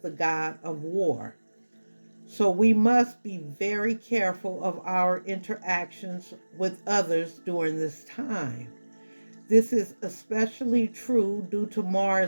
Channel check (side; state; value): both; inverted; correlation -1.00